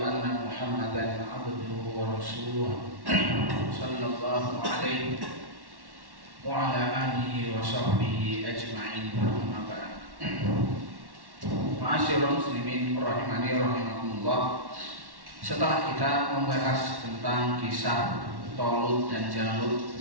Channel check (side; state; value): left; late; 1.1 ms